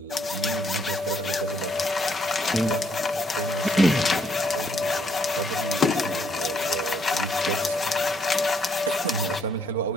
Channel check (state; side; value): normal; both; correlation 0.70